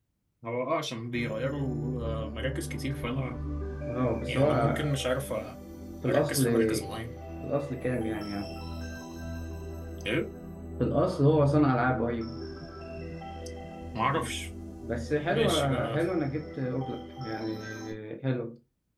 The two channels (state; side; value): identical; both; correlation 1.00